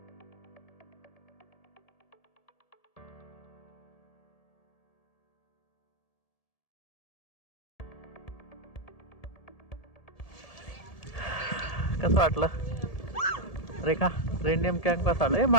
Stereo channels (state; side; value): late; right; 1.7 ms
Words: कसं वाटलं रेखा? रेनडियर कॅम्प कसा वाटलं?